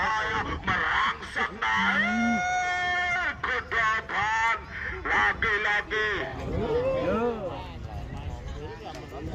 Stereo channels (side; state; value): both; identical; correlation 1.00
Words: merangsang naik ke depan.